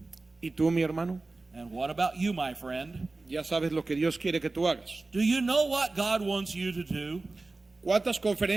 ¿Y tú, mi hermano? And what about you, my friend? Ya sabes lo que Dios quiere que tú hagas. Do you know what God wants you to do? ¿Cuántas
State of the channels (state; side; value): quieter; left; 3.4 dB